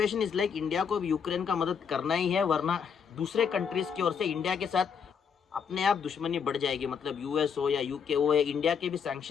is like India को भी Ukraine का मदद करना ही है, वरना दूसरे countries की ओर से इंडिया के साथ अपने आप दुश्मनी बढ़ जाएगी। मतलब यूएस हो या यूके हो, इंडिया के भी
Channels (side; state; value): right; quieter; 6.8 dB